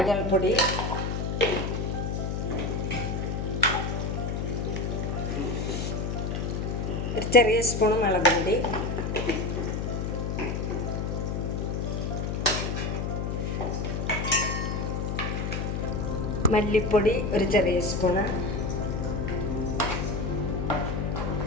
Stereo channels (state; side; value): noise; left; hum, 1 dB below the sound